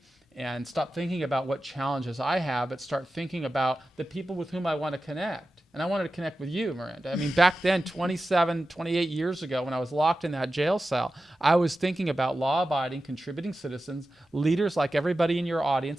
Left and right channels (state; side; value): normal; both; correlation 0.93